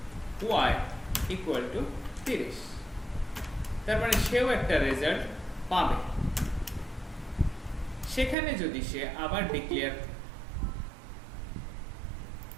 Y equal to 30, তার মানে সেও একটা রেজাল্ট পাবে। সেখানে যদি সে আবার ডিক্লেয়ার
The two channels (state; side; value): drops out; left; at 8.3 s